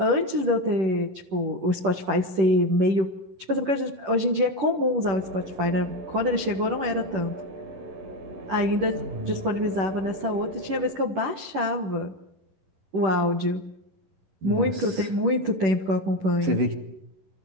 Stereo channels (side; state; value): left; late; 10 ms